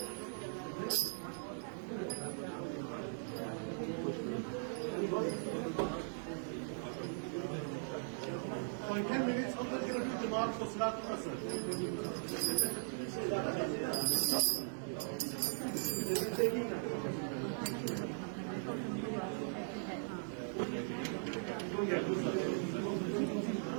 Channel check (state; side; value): silent; left; digital silence